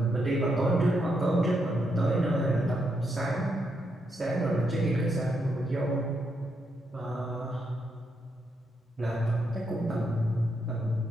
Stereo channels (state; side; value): normal; both; correlation 0.80